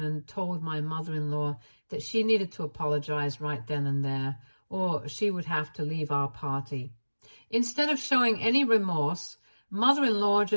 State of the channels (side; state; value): both; inverted; correlation -1.00